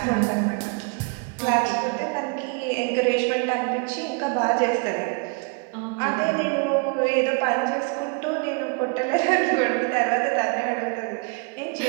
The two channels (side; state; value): left; quieter; 32.6 dB